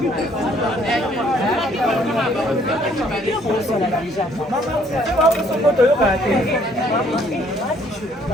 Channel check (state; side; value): normal; both; correlation 0.63